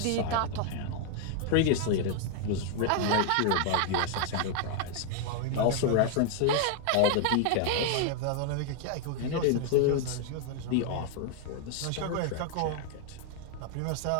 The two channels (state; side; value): different; both; correlation 0.00